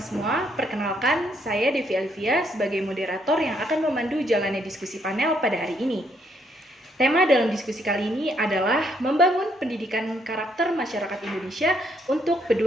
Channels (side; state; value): both; normal; correlation 0.72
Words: semua, perkenalkan saya Devi Alvia sebagai moderator yang akan memandu jalannya diskusi panel pada hari ini. Tema dalam diskusi kali ini adalah membangun pendidikan karakter masyarakat Indonesia untuk